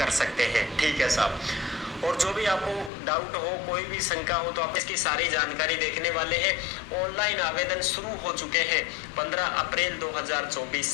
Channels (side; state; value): right; drops out; at 2.9 s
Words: सकते हैं। ठीक है साहब, और जो भी आपको डाउट हो, कोई भी शंका हो, तो आप इसकी सारी जानकारी देखने वाले हैं। ऑनलाइन आवेदन शुरू हो चुके हैं 15 अप्रैल 2024